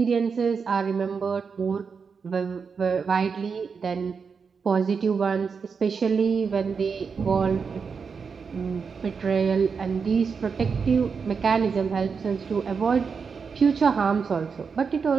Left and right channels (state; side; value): quieter; left; 5.6 dB